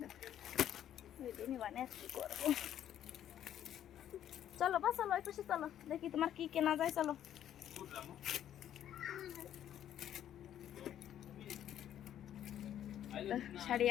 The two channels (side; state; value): right; quieter; 10.8 dB